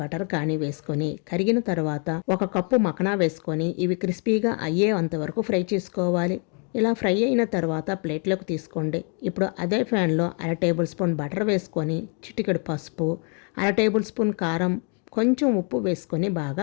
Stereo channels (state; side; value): quieter; right; 38.7 dB